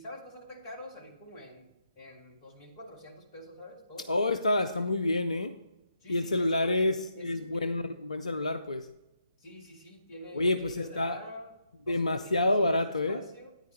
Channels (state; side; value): inverted; both; correlation -0.81